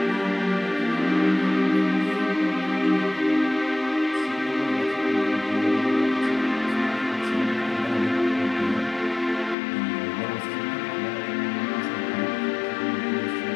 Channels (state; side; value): drops out; right; at 9.6 s